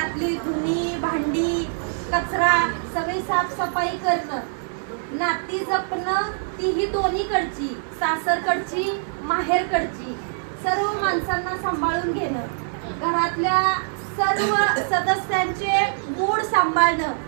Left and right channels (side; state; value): left; silent; 63 dB below the other